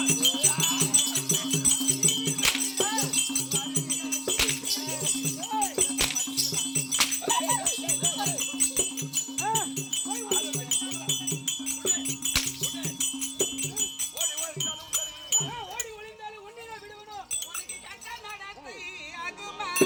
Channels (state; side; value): identical; both; correlation 1.00